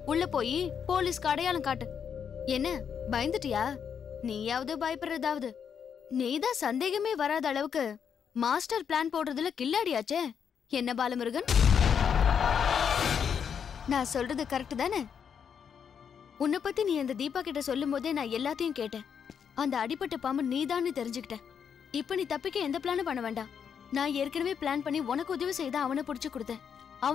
உள்ள போய் போலீஸ்க்கு அடையாளம் காட்டு. என்ன பயந்துட்டியா? நீயாவது பயப்படுறதாவது. நீதான் சந்தேகமே வராத அளவுக்கு மாஸ்டர் பிளான் போடுறதுல கில்லாடியாச்சே. என்ன பாலமுருகன், நான் சொல்றது கரெக்ட் தானே? உன்னை பத்தி நீ அந்த தீபா கிட்ட சொல்லும் போதே நான் எல்லாத்தையும் கேட்டேன். அந்த அடிப்பட்ட பாம்பு நீதான்னு தெரிஞ்சுக்கிட்டேன். இப்ப நீ தப்பிக்க எந்த பிளானும் பண்ண வேண்டாம். நான் ஏற்கனவே பிளான் பண்ணி உனக்கு உதவி செய்த அவனை பிடிச்சு கொடுத்தேன்.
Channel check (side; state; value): right; quieter; 7.4 dB